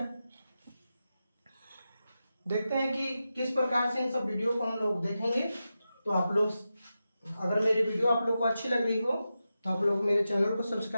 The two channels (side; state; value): both; inverted; correlation -0.91